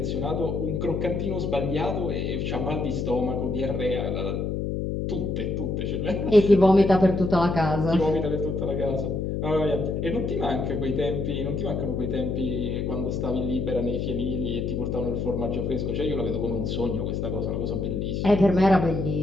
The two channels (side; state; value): left; noise; hum, 1 dB below the sound